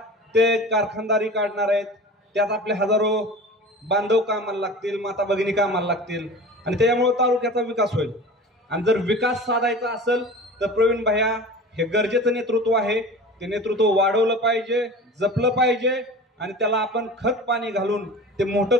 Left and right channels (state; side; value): normal; both; correlation 0.37